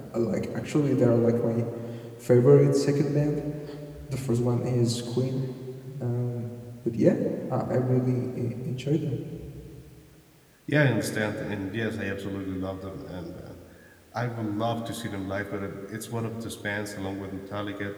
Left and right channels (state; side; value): identical; both; correlation 1.00